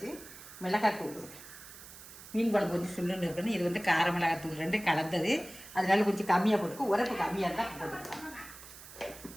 மிளகாத்தூள், மீன் குழம்பு கொஞ்சம் சுள்ளுன்னு இருக்கணும். இது வந்து கார மிளகாத்தூள் 2 கலந்தது, அதனால கொஞ்சம் கம்மியாக போட்டுக்கும். உரப்பு கம்மியாக இருந்தால் போட்டுக்கலாம்.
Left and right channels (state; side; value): noise; right; hiss, 16 dB below the sound